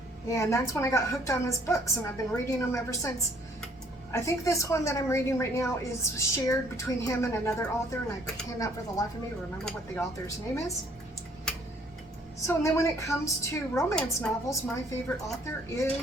and that's when I got hooked on his books, and I've been reading them ever since. I think this one that I'm reading right now is shared between him and another author, and I cannot for the life of me remember what the author's name is. So, and then when it comes to romance novels, my favorite author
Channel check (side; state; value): both; normal; correlation 0.61